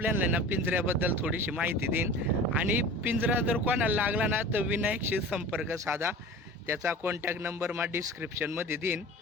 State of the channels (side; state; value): both; normal; correlation 0.38